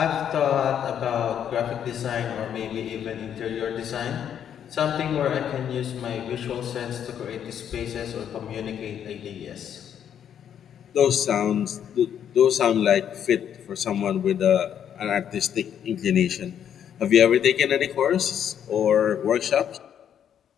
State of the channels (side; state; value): right; quieter; 9.1 dB